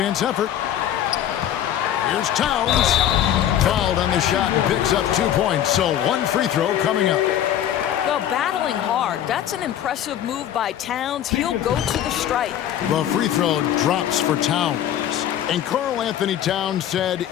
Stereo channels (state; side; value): quieter; right; 10.8 dB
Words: effort. Here's Towns. Fouled on the shot and picks up 2 points. So 1 free throw coming up. Well, battling hard. That's an impressive move by Towns. He'll go to the strike. The free throw drops for Towns. And Karl Anthony Towns said